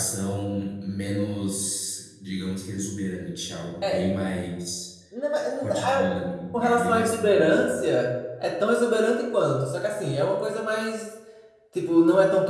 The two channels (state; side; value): identical; both; correlation 1.00